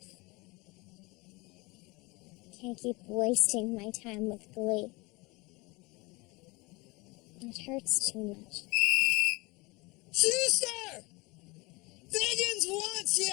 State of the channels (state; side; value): quieter; right; 25.1 dB